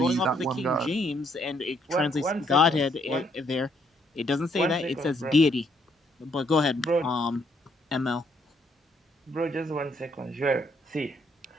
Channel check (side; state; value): both; normal; correlation 0.70